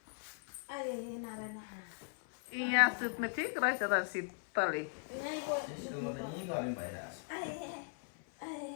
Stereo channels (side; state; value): right; silent; 52 dB below the other